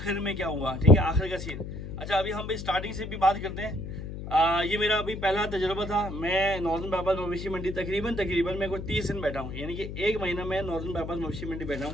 में क्या हुआ, ठीक है, आखिर का सीन। अच्छा, अभी हम भाई स्टार्टिंग से भी बात करते हैं। ये मेरा अभी पहला तजुर्बा था। मैं नॉर्दर्न बाईपास मवेशी मंडी तकरीबन मैं कुछ 30 दिन बैठा हूँ, यानी कि एक महीना मैं नॉर्दर्न बाईपास मवेशी मंडी बैठा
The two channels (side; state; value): left; noise; hum, 8 dB below the sound